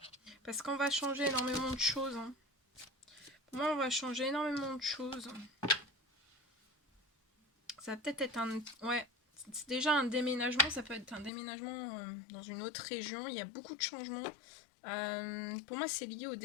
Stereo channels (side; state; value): right; drops out; at 11.3 s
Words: Parce qu'on va changer énormément de choses. Hein. Pour moi, on va changer énormément de choses. Ça va peut-être être un... Ouais, c'est déjà un déménagement. Ça peut être un déménagement dans une autre région. Il y a beaucoup de changements. Pour moi, c'est lié au